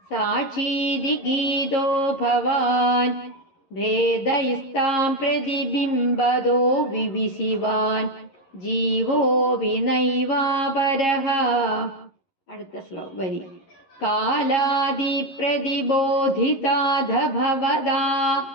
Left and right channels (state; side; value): late; right; 11 ms